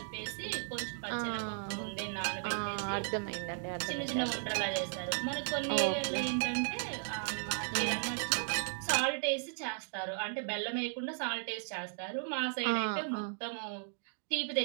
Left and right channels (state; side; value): silent; left; digital silence